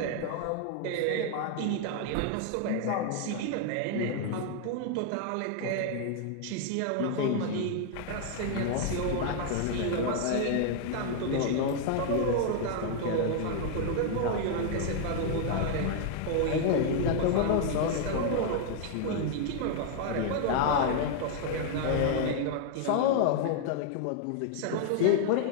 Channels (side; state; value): both; different; correlation 0.00